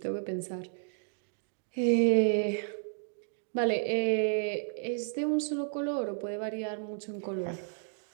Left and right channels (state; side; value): silent; left; digital silence